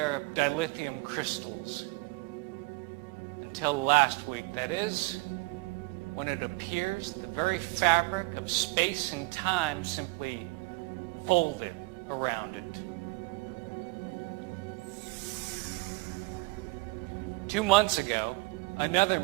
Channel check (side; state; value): left; quieter; 25.7 dB